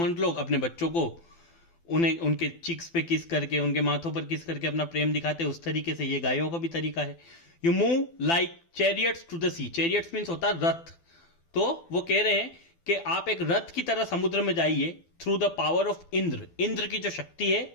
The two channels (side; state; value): right; late; 12 ms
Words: लोग अपने बच्चों को उन्हें उनके चिक्स पे किस करके, उनके माथों पर किस करके अपना प्रेम दिखाते हैं, उस तरीके से ये गायों का भी तरीका है। You move like chariots to the sea, chariots means होता है रथ, तो वो कह रहे हैं कि आप एक रथ की तरह समुद्र में जाइए, through the power of Indra, Indra की जो शक्ति है